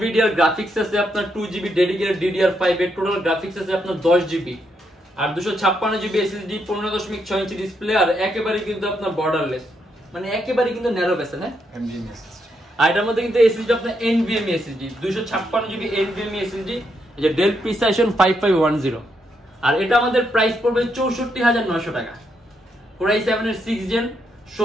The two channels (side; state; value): both; normal; correlation 0.79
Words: গ্রাফিক্স আছে আপনার 2GB ডেডিকেটেড DDR5 এর, টোটাল গ্রাফিক্স আছে আপনার 10GB, আর 256GB SSD, 15.6 ইঞ্চি ডিসপ্লে, আর একেবারে কিন্তু আপনার বর্ডারলেস, মানে একেবারে কিন্তু ন্যারো বেসে না NVMe SSD। আর এটার মধ্যে কিন্তু SSD আপনার NVMe SSD, 256GB NVMe SSD, এই যে ডেল প্রিসাইশন 5510। আর এটা আমাদের প্রাইস পড়বে 64,900 টাকা। Core i7 এর 6th gen,